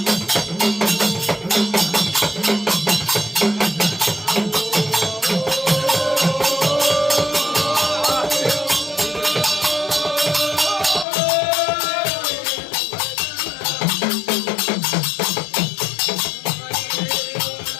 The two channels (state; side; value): drops out; right; at 11.1 s